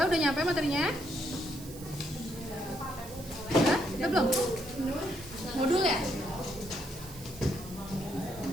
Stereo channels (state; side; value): noise; right; hiss, 16 dB below the sound